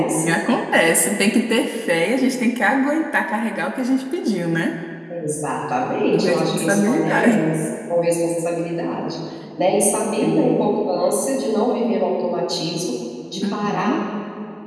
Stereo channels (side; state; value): both; identical; correlation 1.00